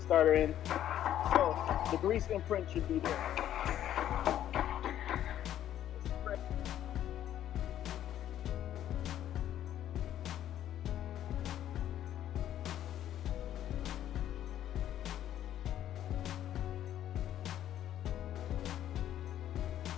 starter in. So the grease imprint should be there.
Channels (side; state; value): right; quieter; 11.4 dB